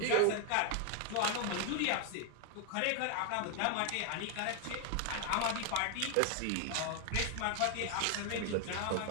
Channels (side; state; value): both; different; correlation 0.00